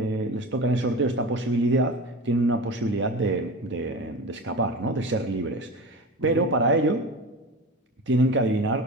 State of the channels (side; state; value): both; normal; correlation 0.30